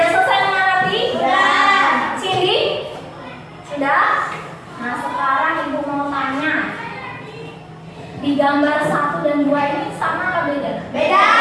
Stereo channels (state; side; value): identical; both; correlation 1.00